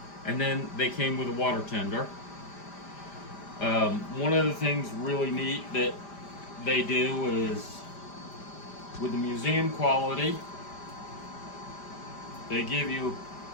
and then they came with a water tender. One of the things really neat that they do is, with the museum quality, they give you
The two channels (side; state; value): right; late; 5.0 ms